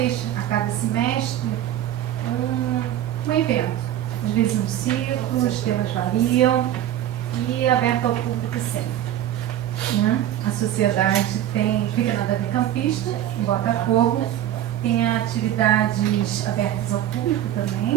a cada semestre, um evento. Às vezes um ciclo, os temas variam e é aberto ao público sempre, né? A sociedade fica na Davi Campista, em Botafogo, tem atividades abertas ao público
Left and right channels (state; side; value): quieter; left; 12.0 dB